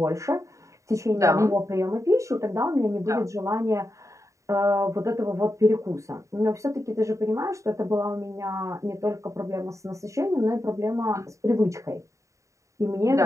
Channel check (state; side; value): late; left; 0.15 ms